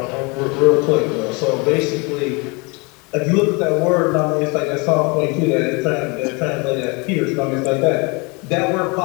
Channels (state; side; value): quieter; right; 29.3 dB